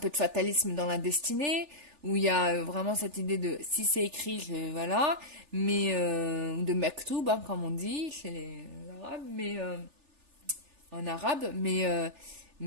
de fatalisme dans la destinée, où il y a vraiment cette idée de si c'est écrit, voilà, mais de mektoub, hein, comme on dit chez les Arabes, mais en arabe, mais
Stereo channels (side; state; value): left; late; 3.4 ms